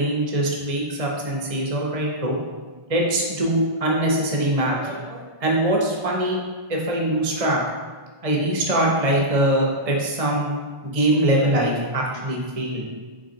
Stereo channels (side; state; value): left; late; 1.6 ms